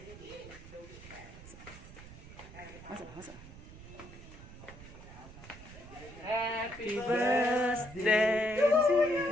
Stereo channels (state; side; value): noise; right; rumble, 16 dB below the sound